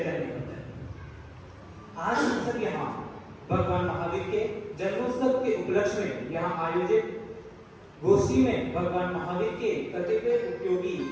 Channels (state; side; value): identical; both; correlation 1.00